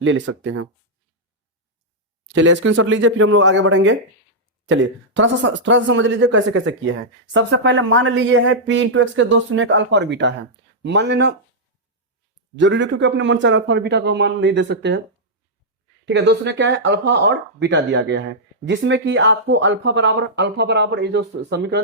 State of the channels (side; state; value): both; normal; correlation -0.08